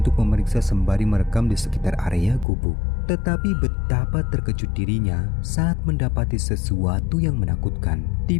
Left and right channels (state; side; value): drops out; right; at 2.5 s